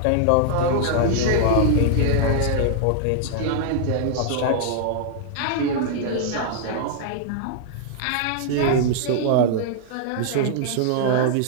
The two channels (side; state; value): both; different; correlation -0.01